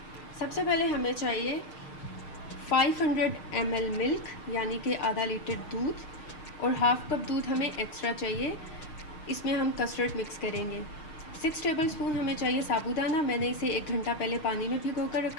सबसे पहले हमें चाहिए 500 ml मिल्क यानी कि आधा लीटर दूध और हाफ़ कप दूध हमें एक्स्ट्रा चाहिए। इसमें हम कस्टर्ड मिक्स करेंगे। 6 टेबलस्पून हमें चाहिए साबूदाना। मैंने इसे 1 घंटा पहले पानी में भिगो कर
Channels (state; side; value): late; right; 6.5 ms